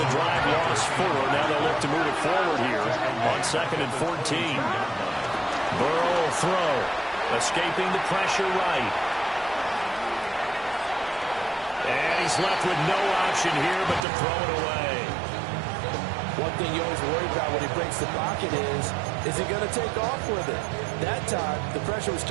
the drive lost 4. Now they'll look to move it forward here on 2nd and 14. Burrow will throw, escaping the pressure right. And he's left with no option here but to throw it away. One thing you always worry about when he breaks the pocket is he going to take off with it? That time, the pressure was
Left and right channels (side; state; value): left; drops out; at 14.1 s